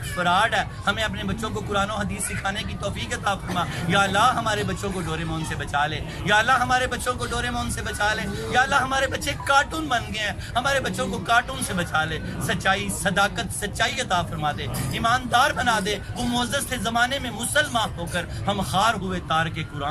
فراڈ ہے, ہمیں اپنے بچوں کو قرآن و حدیث سکھانے کی توفیق عطا فرما. یا اللہ ہمارے بچوں کو ڈوریمون سے بچا لے. یا اللہ ہمارے بچوں کو ڈوریمون سے بچا لے. یا اللہ ہمارے بچے کارٹون بن گئے ہیں, ہمارے بچوں کو کارٹون سے بچا لے. سچائی صداقت سچائی عطا فرما دے, ایماندار بنا دے. وہ معزز تھے زمانے میں مسلمان ہو کر, ہم خار ہوئے تار کے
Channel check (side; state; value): both; identical; correlation 1.00